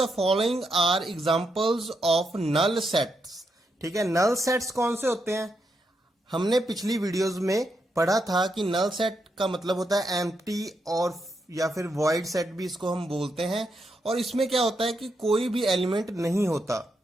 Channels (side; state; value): both; normal; correlation 0.82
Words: following are examples of null sets. ठीक है, नल सेट्स कौन से होते हैं? हमने पिछली वीडियोस में पढ़ा था कि नल सेट का मतलब होता है एम्प्टी और या फिर वॉइड सेट भी इसको हम बोलते हैं। और इसमें क्या होता है कि कोई भी एलिमेंट नहीं होता।